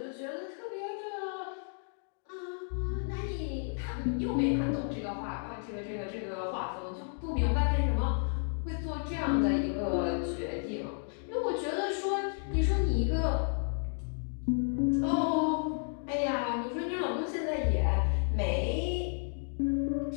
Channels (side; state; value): right; silent; 56 dB below the other